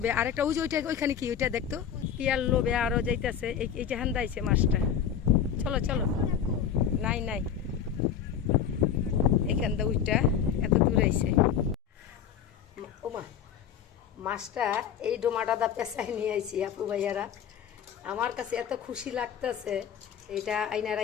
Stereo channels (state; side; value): quieter; right; 8.5 dB